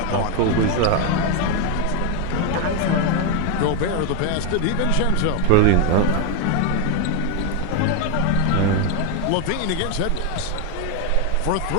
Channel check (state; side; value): different; both; correlation 0.01